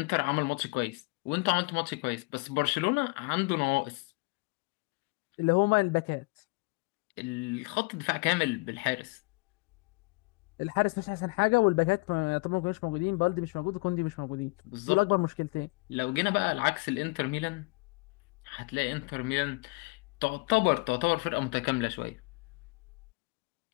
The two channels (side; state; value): right; quieter; 27.8 dB